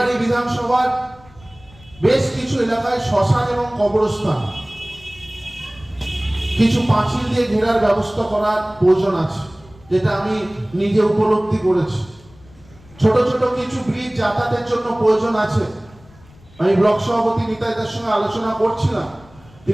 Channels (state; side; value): noise; left; rumble, 25 dB below the sound